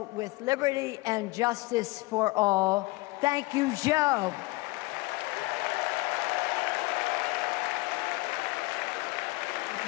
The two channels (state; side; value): quieter; right; 22.3 dB